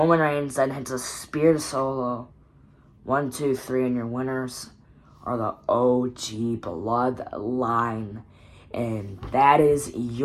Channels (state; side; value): identical; both; correlation 1.00